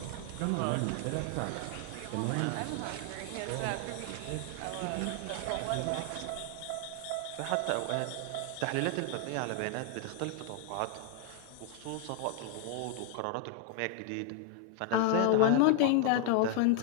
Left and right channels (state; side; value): different; both; correlation 0.00